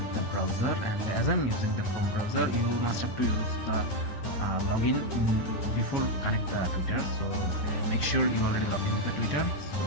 the browser, and as I'm using the Chrome browser, you must have to use the login before connect the Twitter. So make sure you already log in with the Twitter, so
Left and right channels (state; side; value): late; right; 9.8 ms